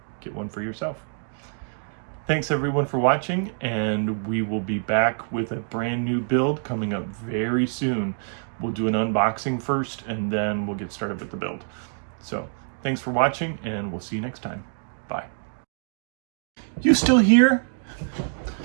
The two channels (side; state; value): left; silent; digital silence